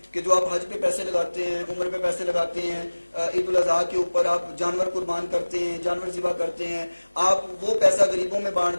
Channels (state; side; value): inverted; both; correlation -1.00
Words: کہ جو آپ حج پہ پیسے لگاتے ہیں، عمر پہ پیسے لگاتے ہیں، عید الاضحیٰ کے اوپر آپ جانور قربان کرتے ہیں، جانور ذبح کرتے ہیں، آپ وہ پیسہ غریبوں میں